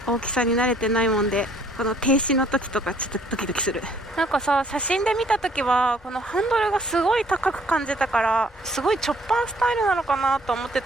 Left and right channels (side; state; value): both; normal; correlation 0.61